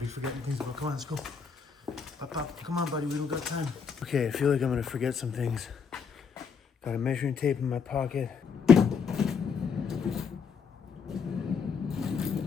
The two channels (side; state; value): right; quieter; 6.1 dB